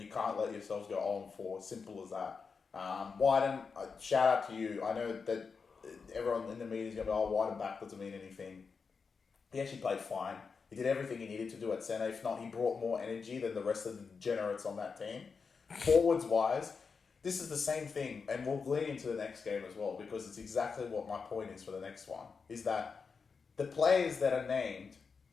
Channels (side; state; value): right; quieter; 5.3 dB